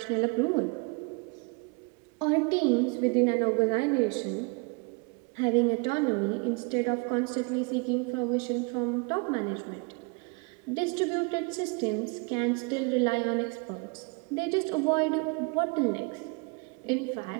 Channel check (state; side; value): quieter; left; 31.3 dB